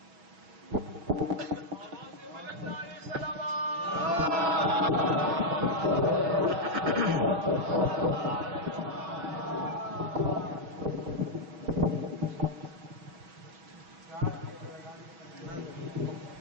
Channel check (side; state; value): left; late; 5.9 ms